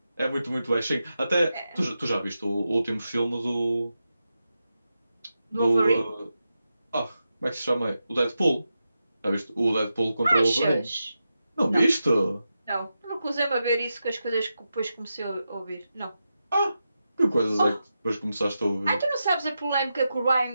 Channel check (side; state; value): both; inverted; correlation -0.89